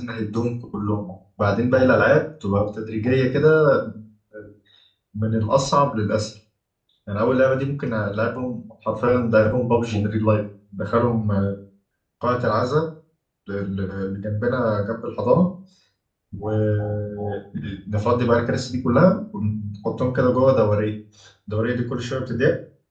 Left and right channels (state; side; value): identical; both; correlation 1.00